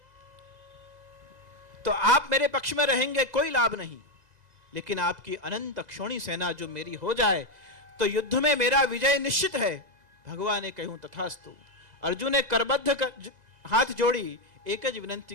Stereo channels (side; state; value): left; late; 2.0 ms